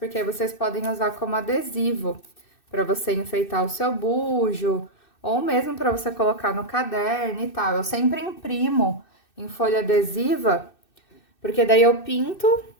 aí vocês podem usar como adesivo para você enfeitar o seu bujo, ou mesmo para você colocar no caderno e tal. Eu sempre imprimo em folha adesiva, porque daí eu pinto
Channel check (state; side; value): late; right; 2.6 ms